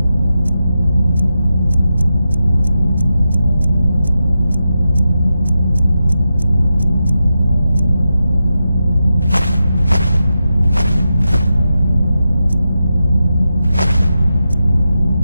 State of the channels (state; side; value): inverted; both; correlation -0.89